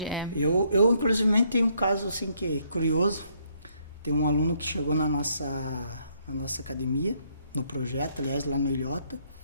Eu inclusive tenho um caso assim que é curioso. Tem um aluno que chegou na nossa academia, no projeto, aliás, lá no Ilhota,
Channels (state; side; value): inverted; both; correlation -0.70